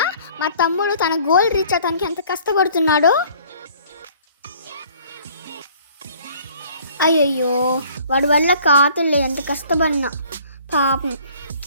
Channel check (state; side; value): inverted; both; correlation -0.54